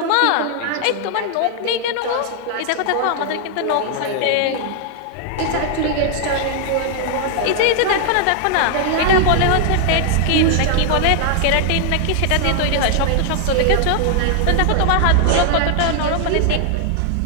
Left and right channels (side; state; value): both; different; correlation 0.00